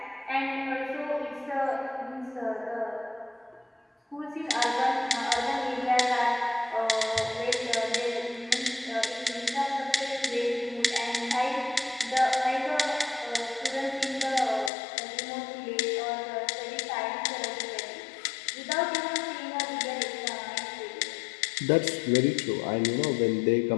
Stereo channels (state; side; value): drops out; right; at 14.7 s